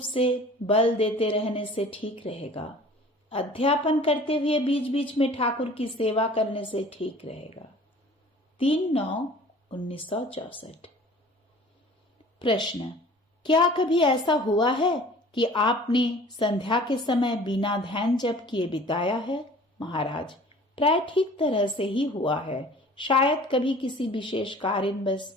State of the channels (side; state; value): both; normal; correlation 0.47